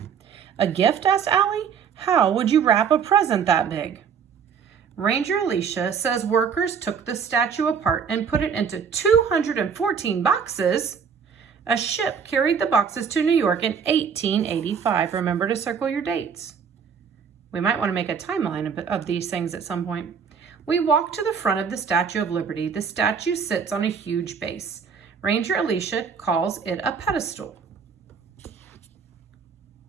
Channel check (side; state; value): left; quieter; 6.7 dB